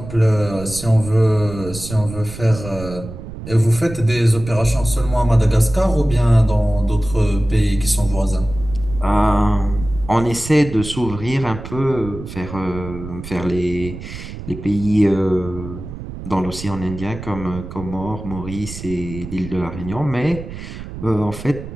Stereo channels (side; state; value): right; noise; rumble, 11 dB below the sound